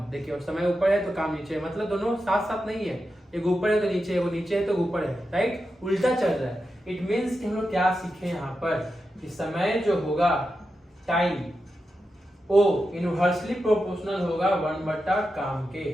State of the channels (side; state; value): both; normal; correlation 0.89